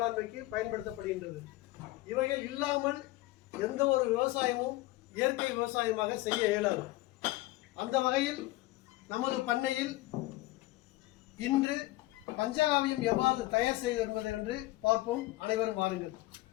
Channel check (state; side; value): quieter; right; 18.6 dB